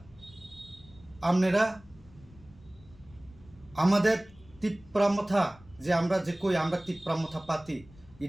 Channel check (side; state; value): left; noise; rumble, 24 dB below the sound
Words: আপনারা আমাদের তিপ্রামথা যে আমরা যে কই আমরা তিপ্রামথা পাতি